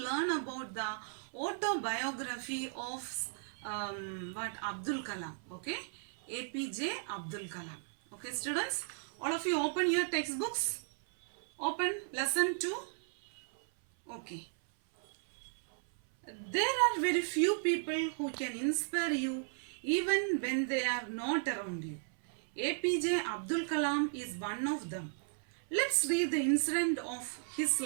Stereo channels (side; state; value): left; silent; 54 dB below the other